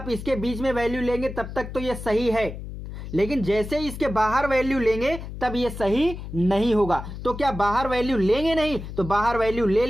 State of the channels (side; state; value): left; noise; hum, 10 dB below the sound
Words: इसके बीच में वैल्यू लेंगे तब तक तो ये सही है, लेकिन जैसे ही इसके बाहर वैल्यू लेंगे तब ये सही नहीं होगा। तो क्या बाहर वैल्यू लेंगे नहीं? तो बाहर वैल्यू ले